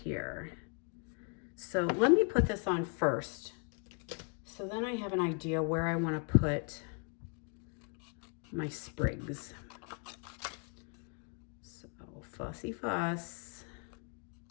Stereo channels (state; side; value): quieter; right; 39.0 dB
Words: So let me put this on first. So then I have an idea where I want to put my sprigs. So fussy fuss.